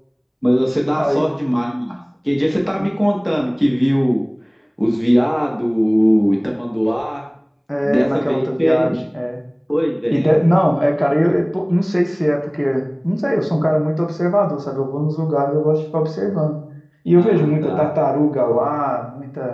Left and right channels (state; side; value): identical; both; correlation 1.00